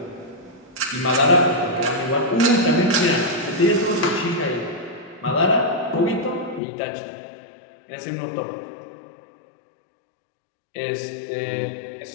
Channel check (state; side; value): drops out; right; at 6.6 s